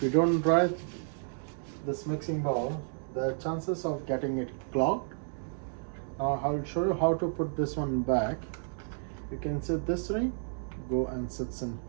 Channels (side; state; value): left; silent; 57 dB below the other